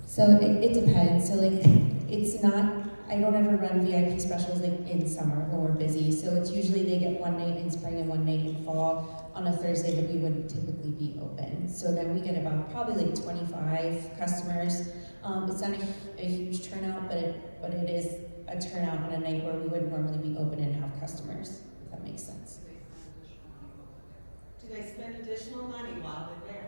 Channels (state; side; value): inverted; both; correlation -1.00